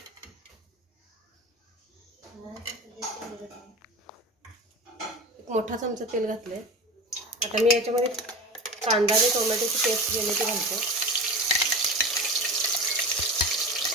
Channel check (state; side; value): normal; both; correlation 0.31